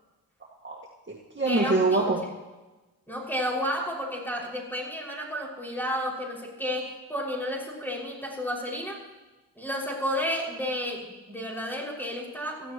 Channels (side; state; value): both; normal; correlation 0.30